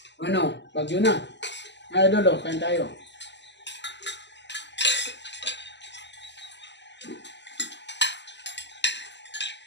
Ano? Bagyo na. Ay, Dolo, kain tayo.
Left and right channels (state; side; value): late; right; 0.51 ms